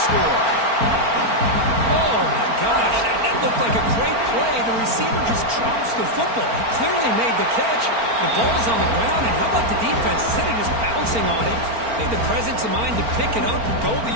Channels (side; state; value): left; late; 4.4 ms